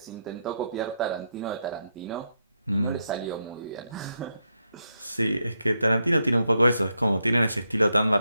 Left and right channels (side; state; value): both; inverted; correlation -0.82